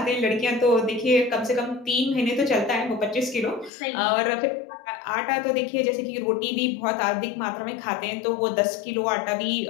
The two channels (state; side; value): drops out; right; at 3.7 s